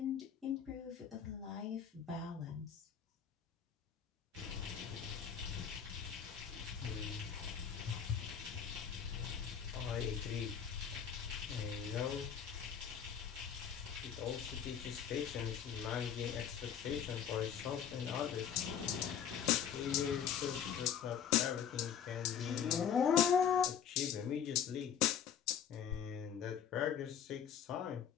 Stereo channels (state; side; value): quieter; right; 8.2 dB